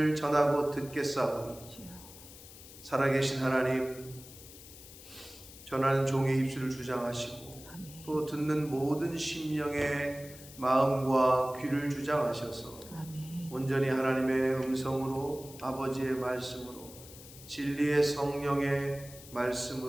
전하고 듣겠사오니 살아계신 하나님, 전하는 종의 입술을 주장하시고 아멘. 또 듣는 모든 심령의 마음과 귀를 주장하셔서 아멘. 온전히 하나님의 음성으로, 아버지의 말씀으로, 진리의 성령의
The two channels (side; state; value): left; noise; hiss, 17 dB below the sound